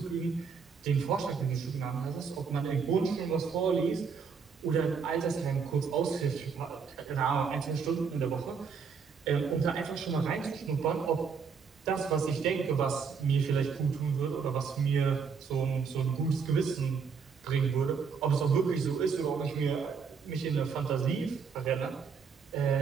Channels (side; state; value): left; quieter; 5.9 dB